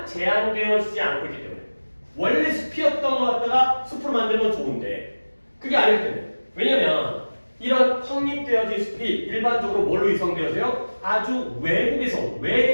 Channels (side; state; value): both; inverted; correlation -1.00